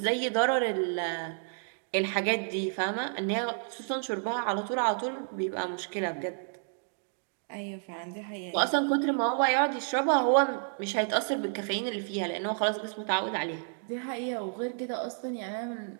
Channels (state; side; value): silent; left; digital silence